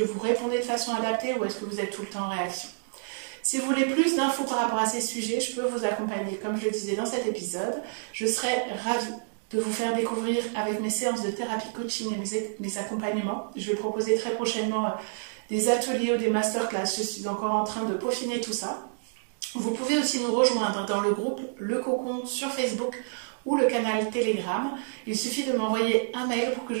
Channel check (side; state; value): left; silent; digital silence